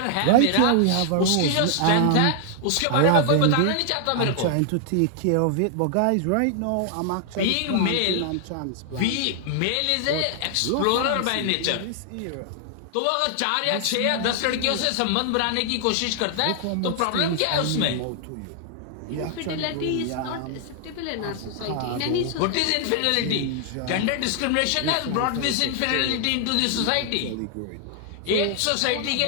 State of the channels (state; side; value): different; both; correlation 0.00